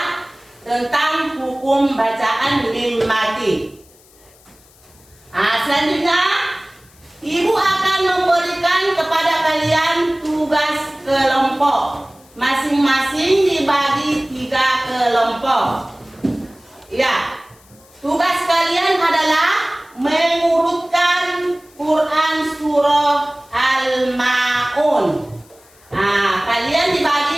tentang hukum bacaan mim mati. Selanjutnya, ibu akan memberikan kepada kalian tugas kelompok. Masing-masing dibagi 3 kelompok. Ya, tugas kalian adalah mengurutkan Quran surah Al-Ma'un. Kalian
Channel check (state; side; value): noise; left; hiss, 28 dB below the sound